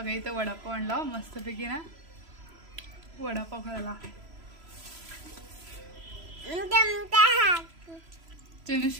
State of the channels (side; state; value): left; late; 3.0 ms